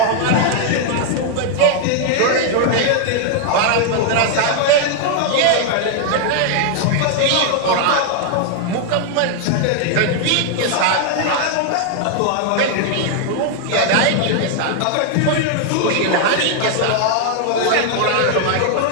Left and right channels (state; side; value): different; both; correlation 0.00